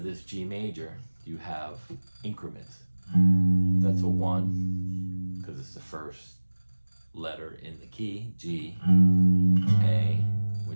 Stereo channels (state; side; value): inverted; both; correlation -1.00